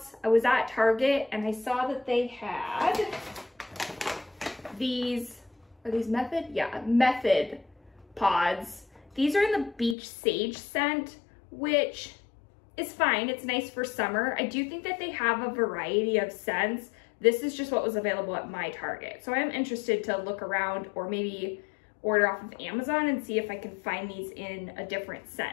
I was at Target and I saw that they had these, are these Method? Yeah, Method pods. These are in the beach sage scent, which is fine. It's nice for summer. I do think that they have a variety of scents. This is just what was available at my Target. So I am interested to look around or maybe order off of Amazon and see if I can find these in a different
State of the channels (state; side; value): drops out; right; at 10.0 s